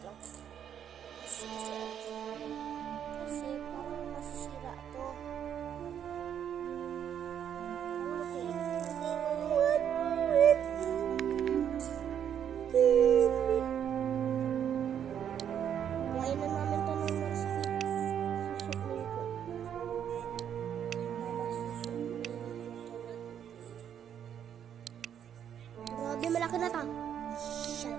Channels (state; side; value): quieter; left; 9.1 dB